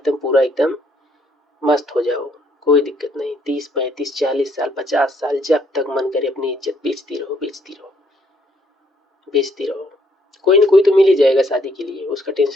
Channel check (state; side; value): normal; both; correlation 0.68